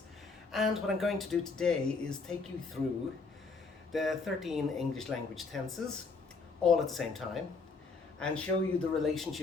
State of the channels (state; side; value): quieter; right; 4.3 dB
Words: and what I'm going to do today is take you through the 13 English language tenses all at the same time and show you the